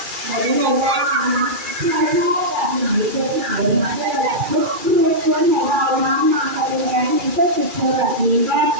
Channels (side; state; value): left; late; 2.3 ms